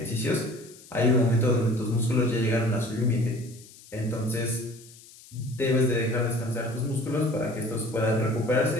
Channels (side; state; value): left; noise; hiss, 21 dB below the sound